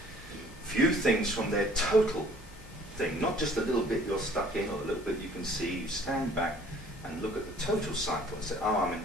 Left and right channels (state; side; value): normal; both; correlation 0.55